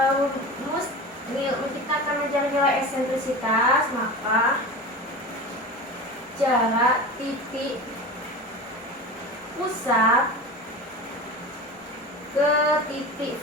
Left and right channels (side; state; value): both; normal; correlation 0.30